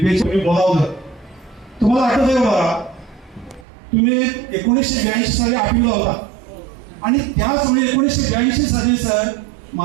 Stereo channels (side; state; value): left; drops out; at 3.7 s